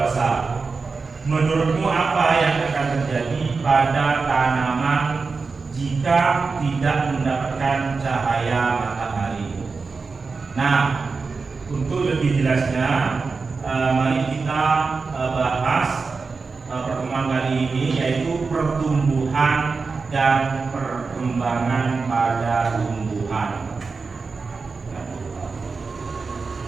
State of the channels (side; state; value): left; quieter; 4.5 dB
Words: Menurutmu apa yang akan terjadi pada tanaman jika tidak mendapatkan cahaya matahari? Nah, untuk lebih jelasnya, mari kita bahas pertemuan kali ini, yaitu pertumbuhan dan perkembangan pada tumbuhan.